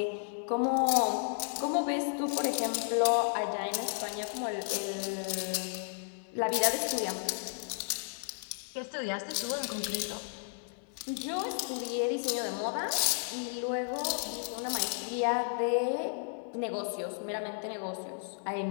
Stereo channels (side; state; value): right; silent; digital silence